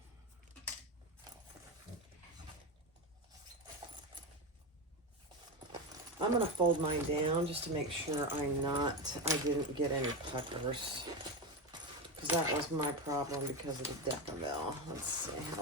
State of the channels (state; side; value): normal; both; correlation 0.17